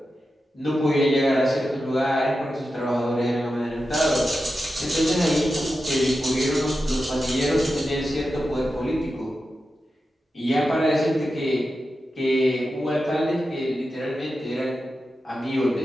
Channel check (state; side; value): normal; both; correlation 0.91